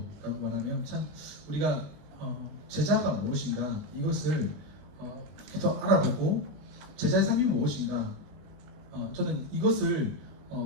말하면 참 우리가 제자가 무엇인가 이것을 더 알아보고 제자의 삶이 무엇인가 저는 이것을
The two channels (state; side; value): late; left; 20 ms